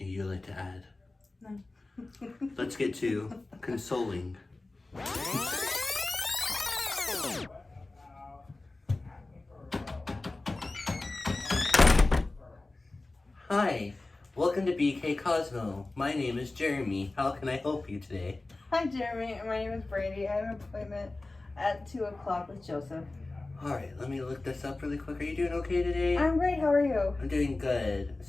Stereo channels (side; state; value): right; quieter; 3.1 dB